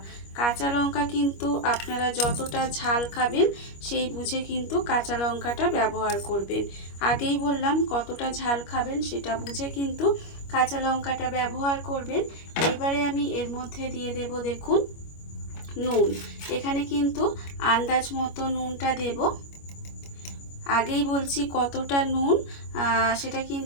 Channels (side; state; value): right; late; 25 ms